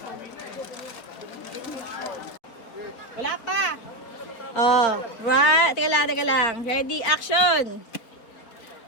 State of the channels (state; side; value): late; right; 4.2 ms